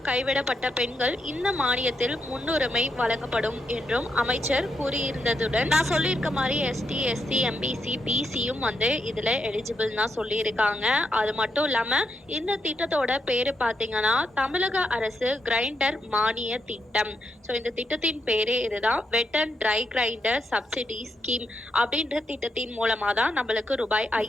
கைவிடப்பட்ட பெண்கள் இந்த மானியத்தில் முன்னுரிமை வழங்கப்படும் என்றும் அமைச்சர் கூறியிருந்ததுடன் நான் சொல்லியிருக்க மாதிரி எஸ்டி, எஸ்சி, எம்பிசி, பிசியும் இதுல எலிஜிபிள் தான் சொல்லியிருக்காங்க. அது மட்டும் இல்லாம இந்த திட்டத்தோட பேரு பாத்தீங்கன்னா தமிழக அரசு கிரைண்டர் மானிய திட்டம். இந்த திட்டத்தின் பேரே இதுதான், வெட் and try grinder subsidy scheme அப்படின்ற திட்டத்தின் மூலமா தான் நம்மளுக்கு ரூபாய்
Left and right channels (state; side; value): normal; both; correlation 0.81